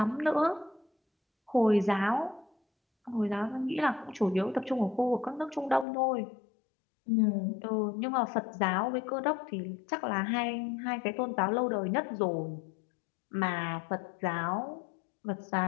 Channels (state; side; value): drops out; right; at 5.9 s